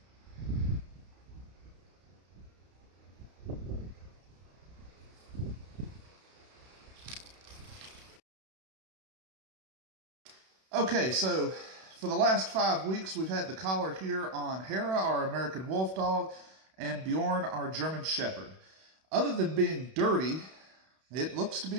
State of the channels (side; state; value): left; late; 32 ms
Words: Okay, so for the last 5 weeks, we've had the collar here on Hera, our American wolf dog, and Bjorn, our German shepherd. Other than being dirty, it looks to be